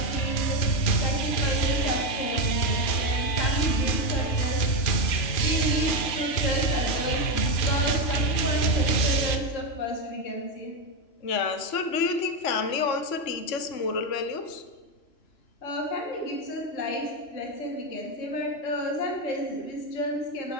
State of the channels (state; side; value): late; right; 3.0 ms